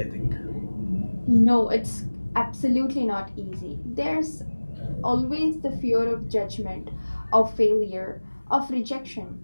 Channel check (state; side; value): inverted; both; correlation -1.00